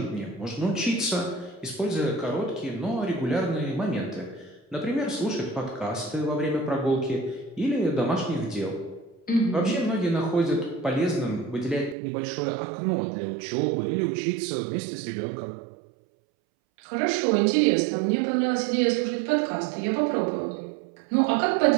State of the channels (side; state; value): left; drops out; at 12.0 s